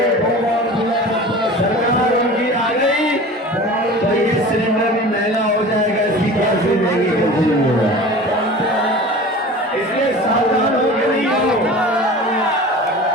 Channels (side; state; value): both; normal; correlation 0.38